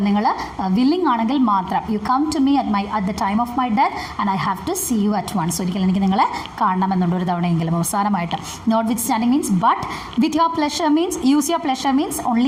നിങ്ങൾ വില്ലിംഗ് ആണെങ്കിൽ മാത്രം. You come to me at the time of my death and I have to see you at once. ഒരിക്കലും എനിക്ക് നിങ്ങളെ കാണണമെന്നുണ്ട്, ഒരു തവണയെങ്കിലും അവസാനമായിട്ട്. Notwithstanding means but. With your pleasure means use your pleasure means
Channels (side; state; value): both; identical; correlation 1.00